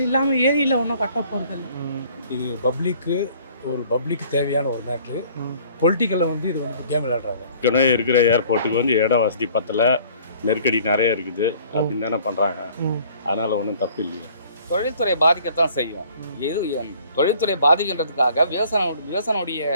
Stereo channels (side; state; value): both; inverted; correlation -0.55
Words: இல்லாமல் ஏரியில் ஒன்றும் கட்ட போகிறது இல்லை. இது பப்ளிக்கு தேவையான ஒரு மேட்ரு. பொலிட்டிக்கலில் வந்து இது வந்து கேம் விளையாடுறாங்க. ஏற்கனவே இருக்கிற ஏர்போர்ட்டுக்கு வந்து இட வசதி பத்தல, நெருக்கடி நிறைய இருக்குது அப்படின்னு தானே பண்ணுறாங்க. அதனால் ஒன்றும் தப்பு இல்லையா? தொழில்துறை பாதிக்கத்தான் செய்யும். தொழில்துறை பாதிக்கின்றதுக்காக விவசாயினுடைய